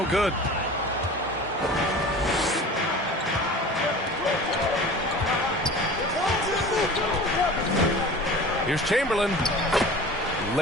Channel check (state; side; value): normal; both; correlation 0.39